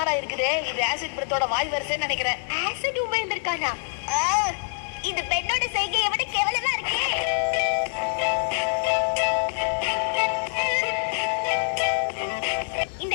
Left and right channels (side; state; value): right; silent; digital silence